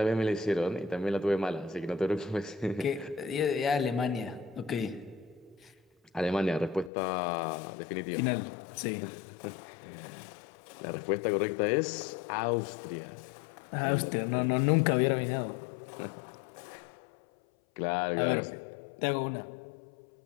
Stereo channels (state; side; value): drops out; right; at 6.9 s